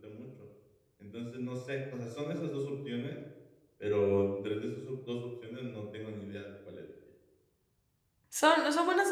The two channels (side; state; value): both; identical; correlation 1.00